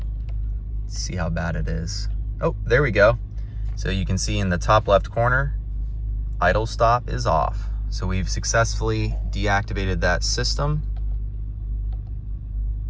Let's see how bad it is. Oh, there we go. So you can see in the top left corner, idle stop is off. So we've successfully deactivated that system.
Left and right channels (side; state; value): both; identical; correlation 1.00